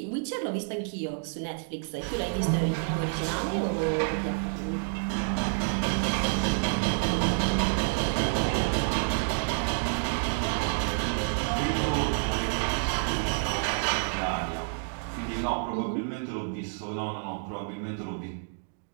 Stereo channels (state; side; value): silent; left; 59 dB below the other